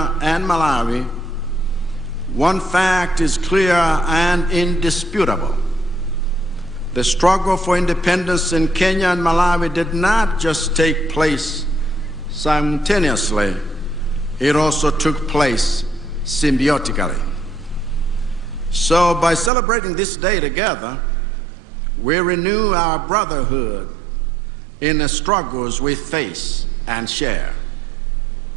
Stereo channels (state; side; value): drops out; left; at 19.5 s